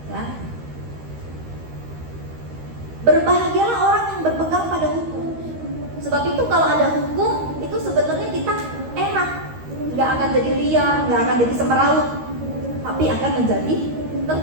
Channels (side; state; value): left; late; 13 ms